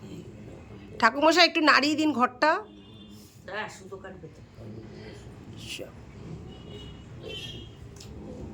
ঠাকুরমশাই একটু নাড়িয়ে দিন ঘরটা। সুতো কাটবে তো।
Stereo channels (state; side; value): identical; both; correlation 1.00